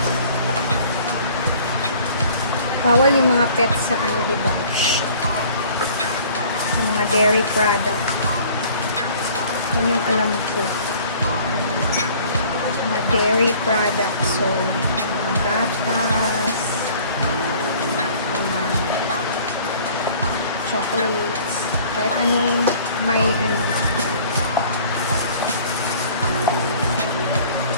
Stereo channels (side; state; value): both; inverted; correlation -0.51